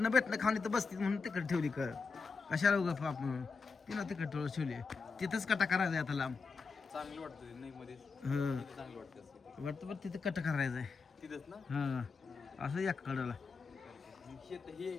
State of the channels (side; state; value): right; quieter; 4.8 dB